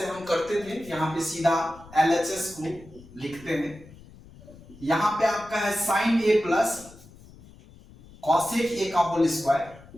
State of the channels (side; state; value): left; noise; rumble, 21 dB below the sound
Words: हम करते थे यहां पे सीधा LHS को लिखते हैं। यहां पे आपका है sine A plus cosec A का whole square